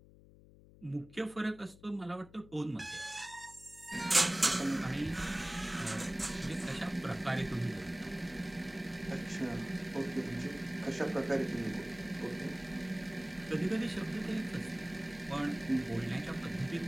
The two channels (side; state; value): left; noise; hum, 22 dB below the sound